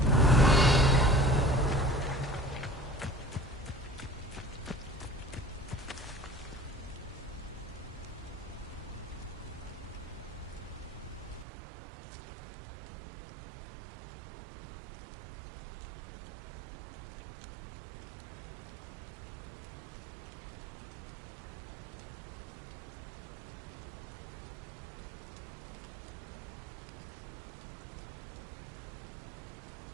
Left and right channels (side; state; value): left; drops out; at 11.5 s